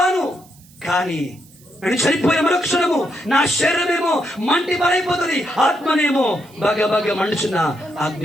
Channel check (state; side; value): noise; right; hiss, 26 dB below the sound